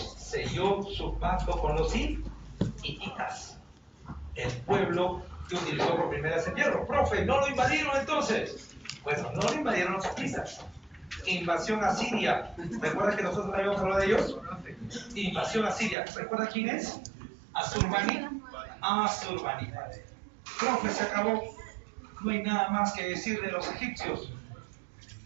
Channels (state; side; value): drops out; left; at 16.0 s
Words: selló su pacto con los hititas, el pueblo que utilizó por primera vez el hierro. Profe, ¿no lo invadieron entonces? Bueno, no lo invadieron los hititas. Invasión a Siria. ¿Recuerdas que nosotros habíamos hablado de ellos? Invasión a Siria. ¿Recuerdas quién es? Asurbanipal. Profe, se acabó. No hay nada más que decir de los egipcios.